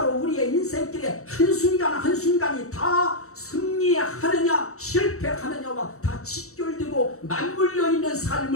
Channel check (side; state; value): right; late; 0.64 ms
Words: 우리의 인생길에 한순간 한순간이 다 승리하느냐 실패하느냐와 다 직결되고 맞물려 있는